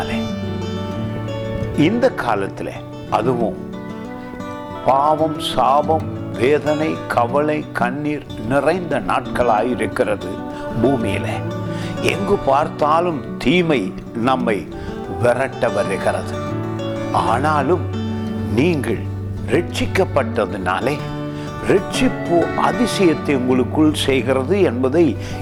இந்த காலத்தில், அதுவும் பாவம், சாபம், வேதனை, கவலை, கண்ணீர் நிறைந்த நாட்களாயிருக்கிறது. பூமியில எங்கு பார்த்தாலும் தீமை நம்மை விரட்ட வருகிறது. ஆனாலும் நீங்கள் ரட்சிக்கப்பட்டதினாலே ரட்சிப்பு அதிசயத்தை உங்களுக்குள் செய்கிறது என்பதை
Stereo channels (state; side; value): identical; both; correlation 1.00